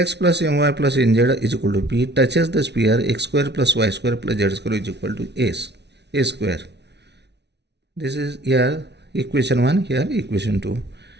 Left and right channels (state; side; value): late; left; 0.50 ms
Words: plus my plus nz is equal to p touches the sphere x square plus y square plus z square is equal to a square. This is here equation 1, here equation 2.